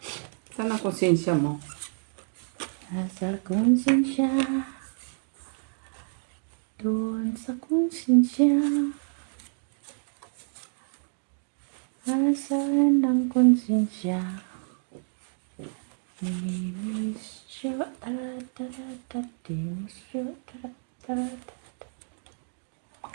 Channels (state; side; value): silent; left; 59 dB below the other